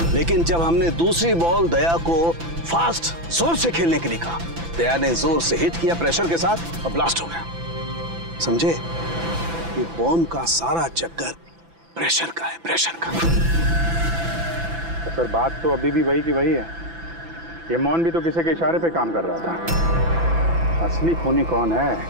लेकिन जब हमने दूसरी बॉल दया को फास्ट जोर से खेलने के लिए कहा, दया ने जोर से हिट किया प्रेशर के साथ और ब्लास्ट हो गया। समझे? ये बॉम्ब का सारा चक्कर प्रेशर का है, प्रेशर का। तो सर बात तो अभी भी वही की वही है। ये मोहन भी तो किसी के इशारे पे काम कर रहा था। असली खूनी कौन है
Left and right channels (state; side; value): late; left; 6.0 ms